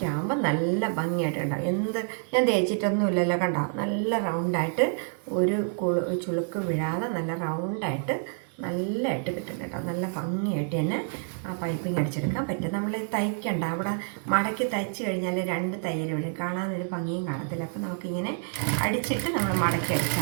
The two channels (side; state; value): left; silent; 59 dB below the other